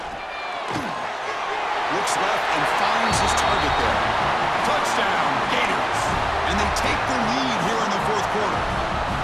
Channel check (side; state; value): both; identical; correlation 1.00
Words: Looks left and finds his target there. Touchdown, Gators. And they take the lead here in the 4th quarter.